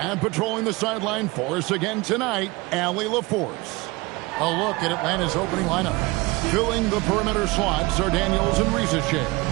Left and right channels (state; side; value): quieter; left; 23.2 dB